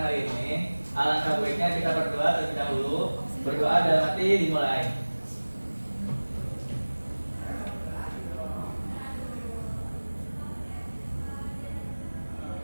hari ini, alangkah baiknya kita berdoa terlebih dahulu. Berdoa dalam hati dimulai.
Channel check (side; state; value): both; inverted; correlation -1.00